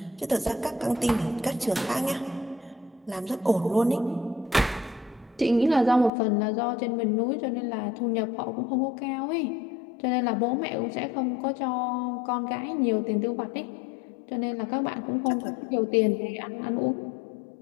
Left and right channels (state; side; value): drops out; right; at 6.1 s